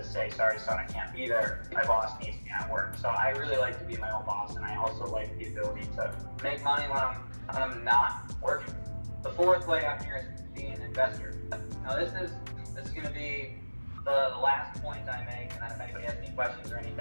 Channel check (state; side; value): inverted; both; correlation -1.00